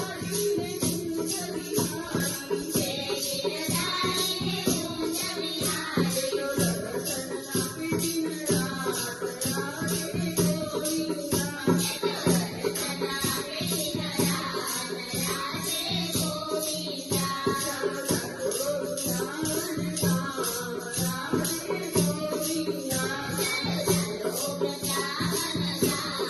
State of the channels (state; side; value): identical; both; correlation 1.00